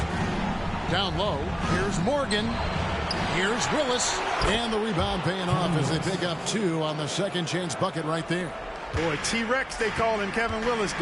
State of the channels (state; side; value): identical; both; correlation 1.00